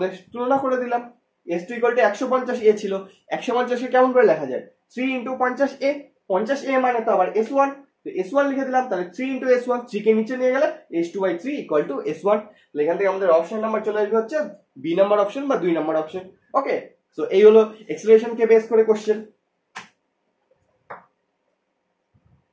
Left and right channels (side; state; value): both; identical; correlation 1.00